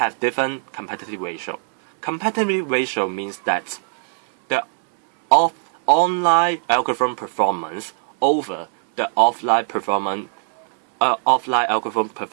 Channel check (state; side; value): silent; left; 65 dB below the other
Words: different competitive ratio. Competitive ratio means that the online algorithm performance over the offline algorithm